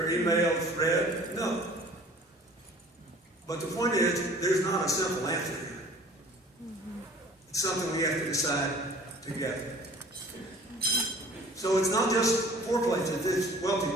emails read? No. But the point is, there's not a simple answer here. It's something we have to decide together. So it's not just poor places, it's wealthy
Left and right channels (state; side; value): normal; both; correlation 0.49